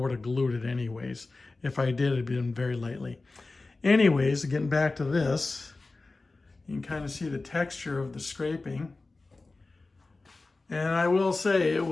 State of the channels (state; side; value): quieter; right; 3.5 dB